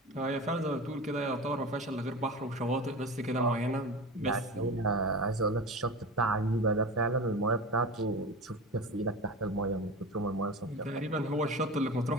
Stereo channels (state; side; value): normal; both; correlation 0.30